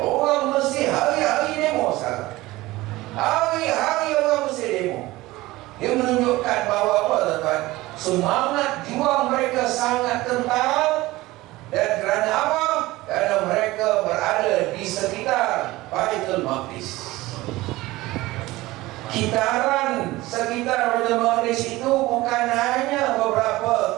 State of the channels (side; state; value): left; quieter; 18.9 dB